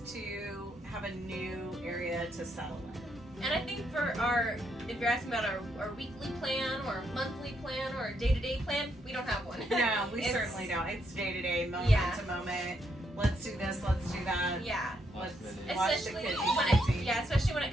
to have a new area to settle in. And I think for if you're asking about our weekly plan or monthly plan or day-to-day plan, we don't have one. No, we It's- certainly don't. It's day to day, moment Yeah. to moment. Let's do this, let's do that. Yeah. Let's Especially watch the Especially kids. especially when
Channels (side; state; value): both; normal; correlation 0.76